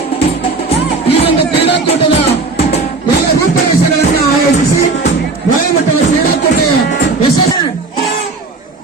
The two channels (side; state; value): left; quieter; 3.7 dB